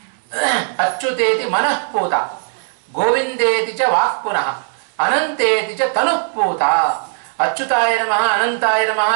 ಅಚ್ಯುತೇತಿ ಮನಃಪೂತ, ಗೋವಿಂದೇತಿ ಚ ವಾಕ್ ಪುನಃ, ಅನಂತೇತಿ ಚ ತನುಃಪೂತ. ಅಚ್ಯುತಾಯ ನಮಃ, ಅನಂತಾಯ ನಮಃ,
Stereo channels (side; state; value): left; silent; 67 dB below the other